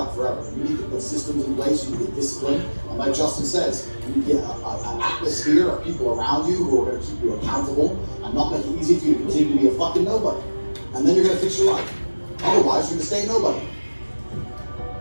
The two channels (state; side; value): inverted; both; correlation -1.00